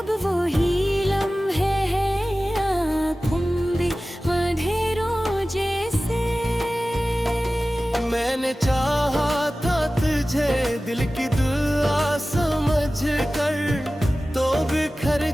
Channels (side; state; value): both; normal; correlation 0.96